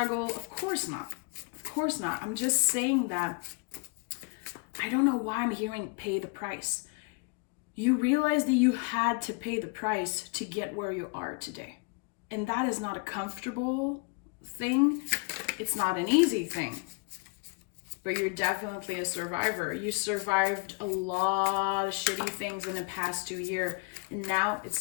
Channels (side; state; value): right; quieter; 30.8 dB